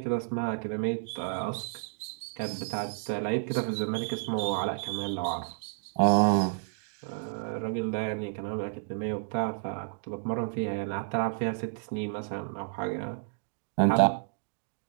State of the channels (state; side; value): silent; left; digital silence